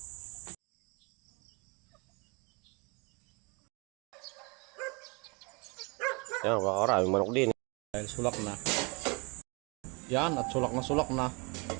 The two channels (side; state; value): left; quieter; 30.0 dB